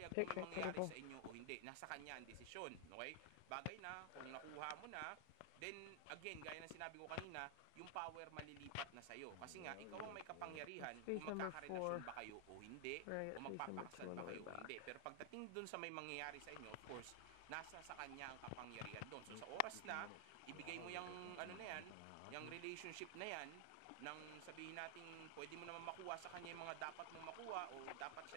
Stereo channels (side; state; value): both; different; correlation 0.00